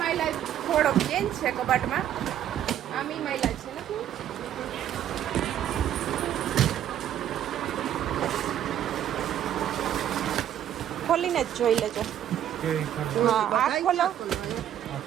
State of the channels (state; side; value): quieter; left; 10.8 dB